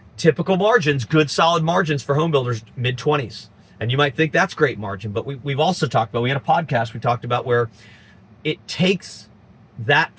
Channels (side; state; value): both; identical; correlation 1.00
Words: typical margins, good solid margins for home builders, mid-20s. And you might think that's great margin, but we've also talked about, we had a podcast we talked about where it takes that